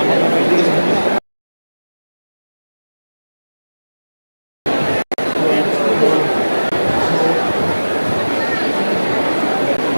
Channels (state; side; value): inverted; both; correlation -1.00